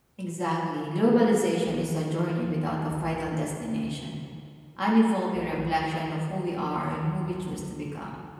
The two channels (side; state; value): both; identical; correlation 1.00